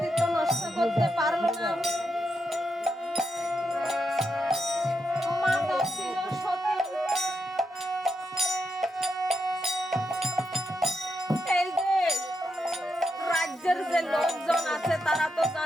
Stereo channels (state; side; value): normal; both; correlation 0.84